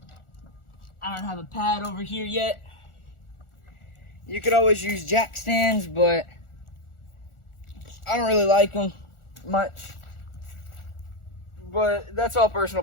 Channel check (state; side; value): late; right; 1.4 ms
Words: I don't have a pad over here yet, you could always use jack stands, but I don't really like them much. But that's all